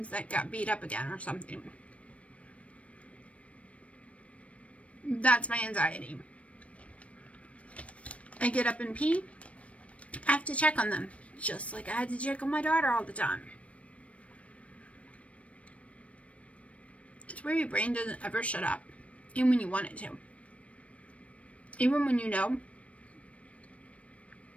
that got beat up again or something. That's my anxiety. I get up and pee. I have to check on them. Just like I had to check on my daughter all the time. It's where your brain doesn't ever shut up. Even when you want it to. Even when you know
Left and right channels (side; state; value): right; late; 0.064 ms